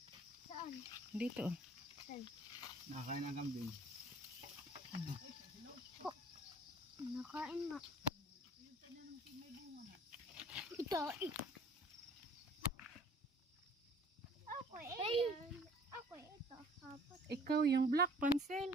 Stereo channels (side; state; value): both; normal; correlation 0.53